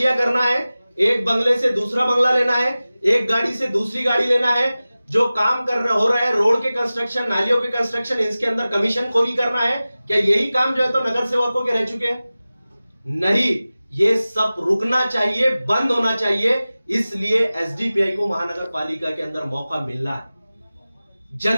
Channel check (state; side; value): inverted; both; correlation -0.97